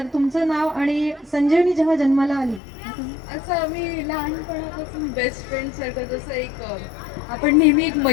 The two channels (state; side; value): drops out; right; at 2.6 s